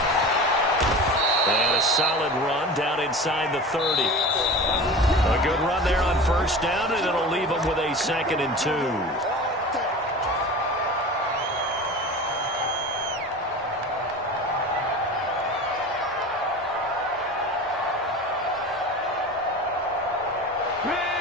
And a solid run down inside the 30. A good run there on first down, and it'll leave them with a 2nd and 2.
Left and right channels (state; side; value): normal; both; correlation 0.34